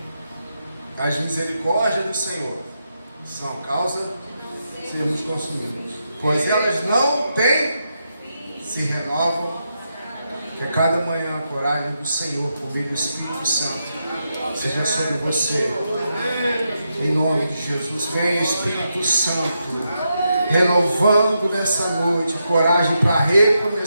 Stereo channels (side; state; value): both; inverted; correlation -0.84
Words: As misericórdias do Senhor são a causa de sermos consumidos, pois elas não têm, se renovam, que a cada manhã a coragem do Senhor, por meio do Espírito Santo, seja sobre você. Em nome de Jesus, vem Espírito Santo, renovando nessa noite coragem para